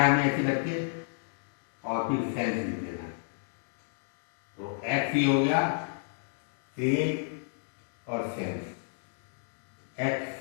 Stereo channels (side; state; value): right; silent; digital silence